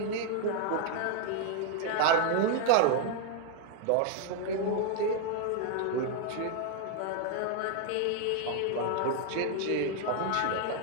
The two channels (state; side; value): different; both; correlation 0.00